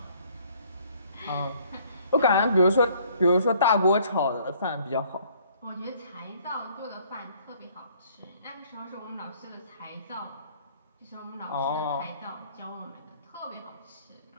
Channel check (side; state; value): both; inverted; correlation -0.60